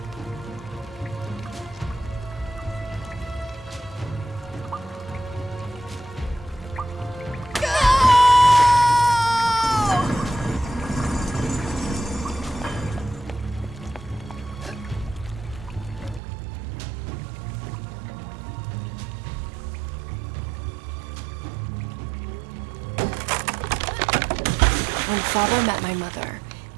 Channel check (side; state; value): left; drops out; at 16.2 s